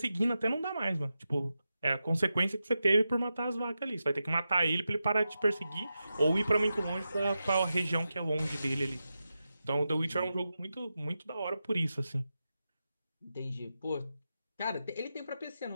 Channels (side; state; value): both; inverted; correlation -0.90